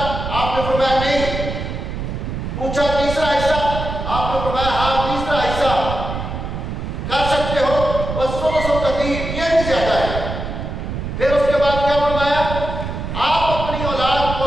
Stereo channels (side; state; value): right; noise; rumble, 5 dB below the sound